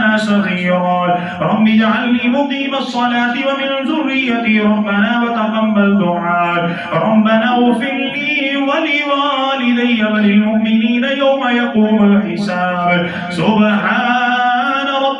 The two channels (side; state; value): both; identical; correlation 1.00